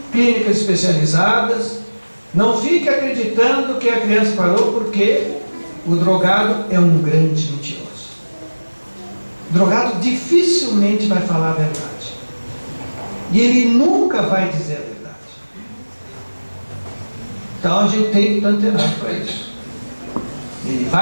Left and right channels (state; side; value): inverted; both; correlation -1.00